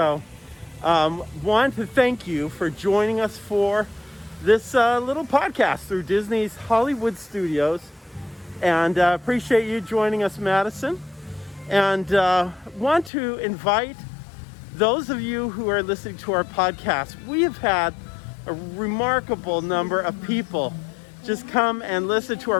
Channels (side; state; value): right; drops out; at 13.1 s